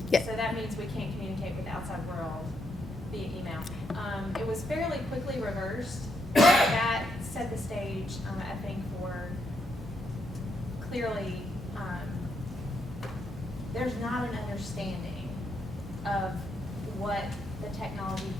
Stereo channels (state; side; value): normal; both; correlation 0.78